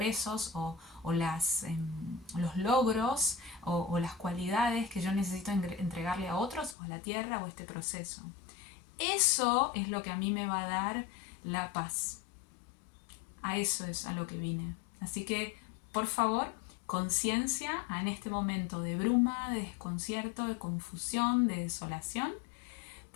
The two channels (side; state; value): right; drops out; at 6.8 s